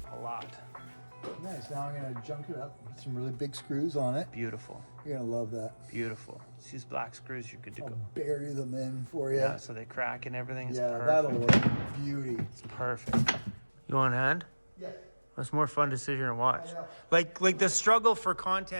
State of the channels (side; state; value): both; inverted; correlation -1.00